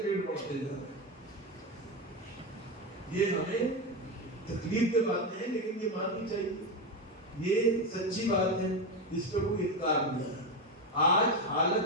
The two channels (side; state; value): both; normal; correlation 0.14